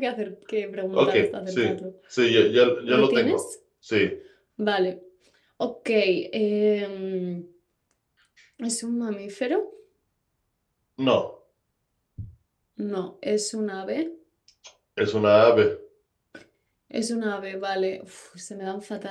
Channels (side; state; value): both; identical; correlation 1.00